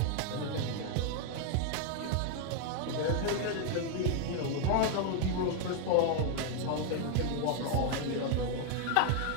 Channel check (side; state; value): both; different; correlation 0.00